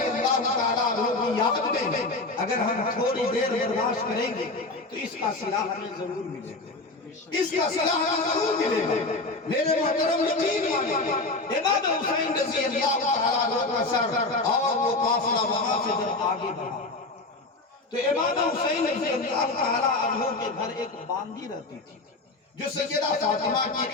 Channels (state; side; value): quieter; right; 3.2 dB